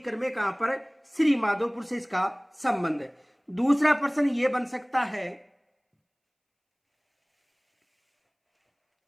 में कहां पर? श्री माधोपुर से इसका संबंध है। दूसरा प्रश्न ये बन सकता है,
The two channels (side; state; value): both; identical; correlation 1.00